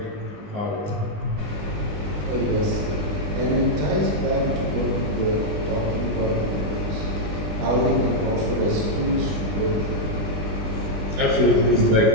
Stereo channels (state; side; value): late; left; 20 ms